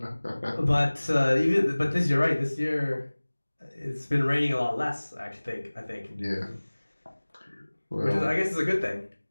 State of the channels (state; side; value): inverted; both; correlation -1.00